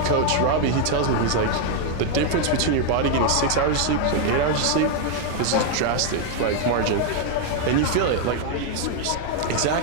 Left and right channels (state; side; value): different; both; correlation 0.00